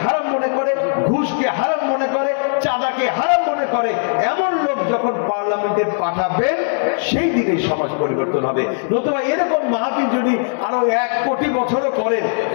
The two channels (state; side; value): silent; right; digital silence